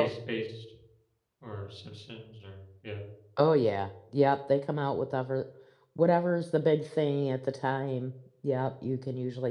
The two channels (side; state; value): both; identical; correlation 1.00